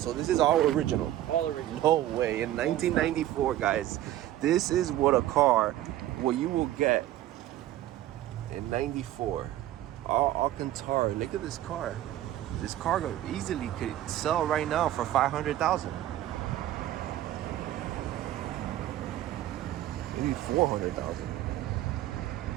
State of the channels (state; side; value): quieter; left; 13.6 dB